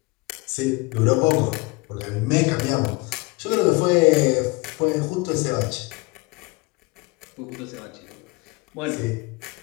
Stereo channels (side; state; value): right; quieter; 25.6 dB